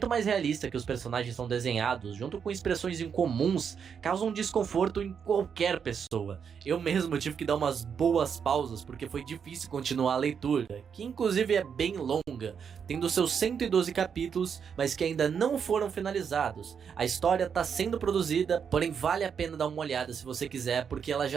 mais realista que os personagens são desenhados, junto com expressões incomuns, causam desconforto em qualquer pessoa. Eu mesmo tive que dar umas boas pausas porque foi difícil continuar a leitura, que inclusive é bem longa, tendo seus 112 capítulos, mas que ainda não foram finalizados. A história está sendo produzida, porém vale a pena dar uma olhada se você quiser, porque ela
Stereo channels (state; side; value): quieter; left; 7.0 dB